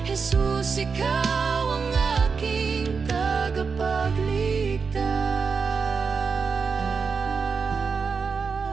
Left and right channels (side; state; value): left; quieter; 5.3 dB